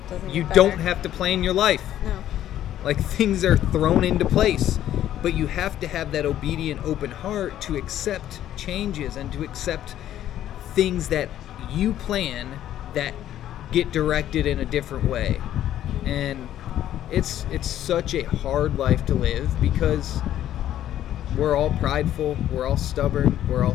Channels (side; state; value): right; quieter; 11.9 dB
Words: Doesn't you get don't better. have to plan your life. No. Like, things are thrown into place, but you have to have that obedient, open heart to accept changes and to accept things that you plan that get directed in a different way. And it's such a hard life to live because we're all prideful, we're all stubborn, we're all